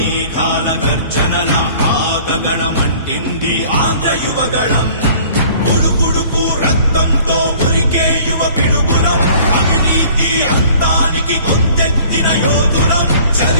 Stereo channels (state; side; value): inverted; both; correlation -0.51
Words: గర్జనల ఆగగణమంటింది ఆంధ్ర యువగళం ఉడుకుడుకు రక్తంతో ఉరికే యువ పిడుగులం అవినీతి అంతానికి గొంతెత్తిన యోధులం